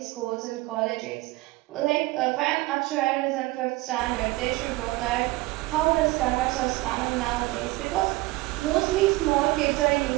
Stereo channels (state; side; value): quieter; left; 20.7 dB